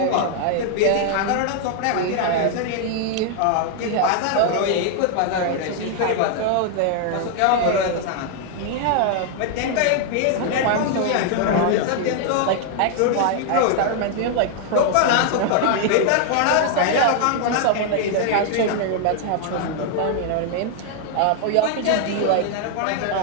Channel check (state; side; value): different; both; correlation 0.00